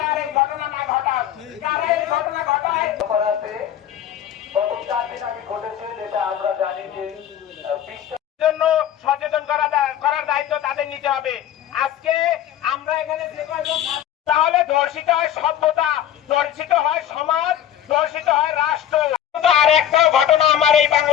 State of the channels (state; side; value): quieter; right; 10.9 dB